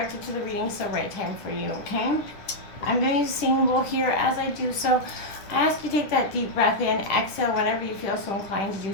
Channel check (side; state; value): right; late; 10 ms